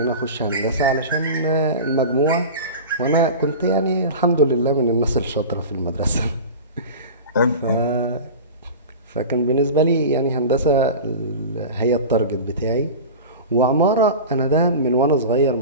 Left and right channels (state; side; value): inverted; both; correlation -0.31